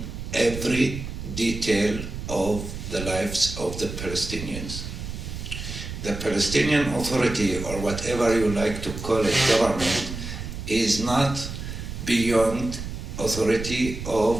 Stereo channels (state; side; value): noise; right; rumble, 8 dB below the sound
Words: every detail of the lives of the Palestinians. The Palestinian Authority, or whatever you like to call it, government, is not beyond authority